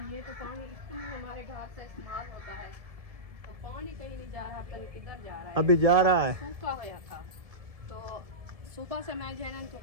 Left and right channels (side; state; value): left; late; 1.7 ms